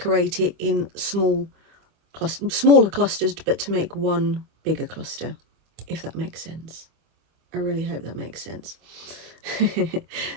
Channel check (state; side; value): late; left; 25 ms